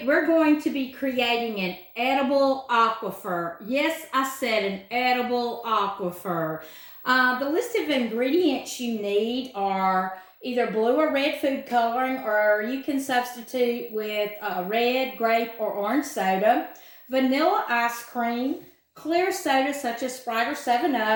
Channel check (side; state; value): both; identical; correlation 1.00